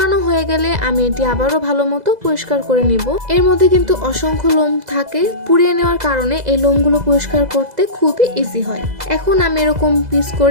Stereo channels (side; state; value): left; late; 2.0 ms